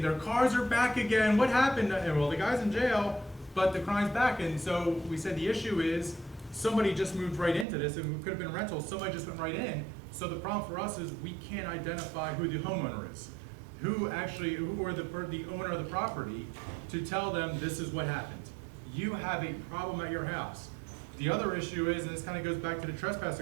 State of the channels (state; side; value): drops out; left; at 7.7 s